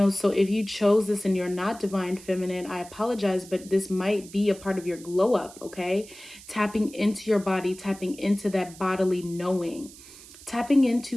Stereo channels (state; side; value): noise; right; hiss, 19 dB below the sound